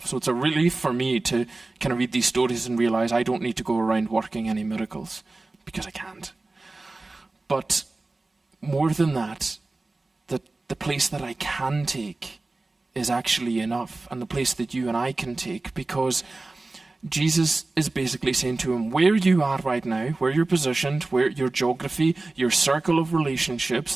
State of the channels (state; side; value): quieter; left; 3.2 dB